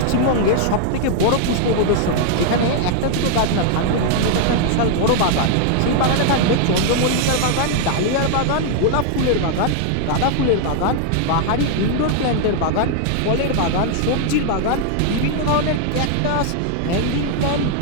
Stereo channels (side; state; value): both; different; correlation 0.00